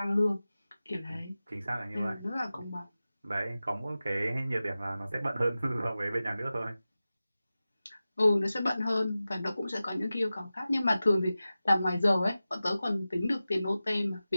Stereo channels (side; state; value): both; inverted; correlation -0.95